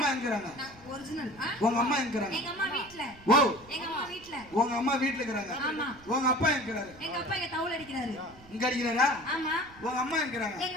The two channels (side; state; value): right; noise; rumble, 23 dB below the sound